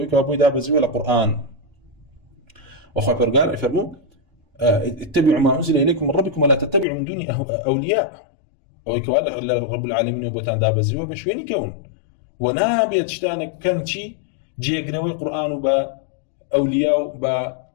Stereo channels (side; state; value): right; drops out; at 6.9 s